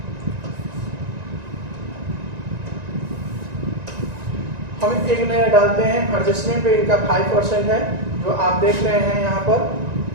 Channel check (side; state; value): left; late; 1.9 ms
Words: हम एक नजर डालते हैं एडजस्टमेंट पे, इनका 5% है जो आप देख रहे हैं यहाँ पर,